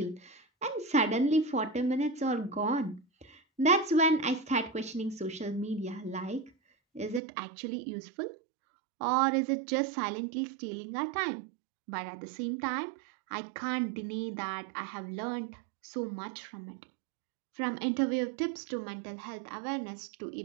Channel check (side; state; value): left; drops out; at 7.2 s